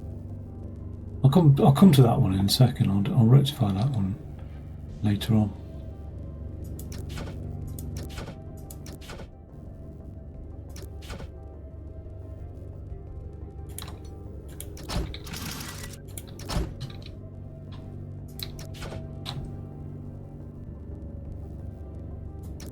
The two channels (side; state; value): both; identical; correlation 1.00